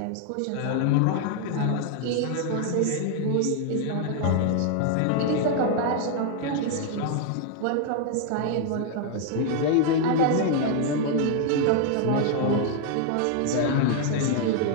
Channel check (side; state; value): both; different; correlation 0.00